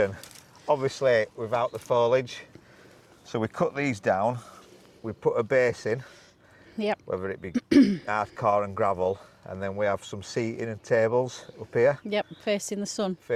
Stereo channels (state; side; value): identical; both; correlation 1.00